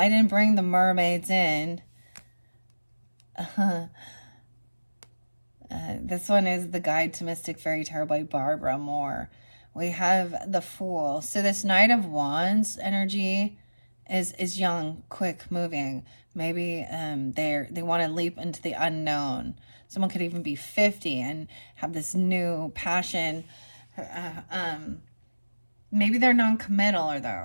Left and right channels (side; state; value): both; inverted; correlation -1.00